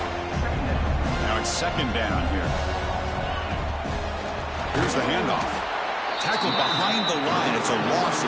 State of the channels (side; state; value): both; identical; correlation 1.00